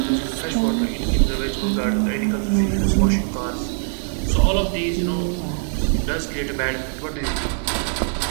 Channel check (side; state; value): left; silent; digital silence